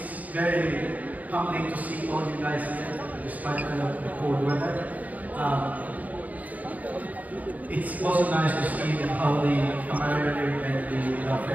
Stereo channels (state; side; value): late; left; 0.075 ms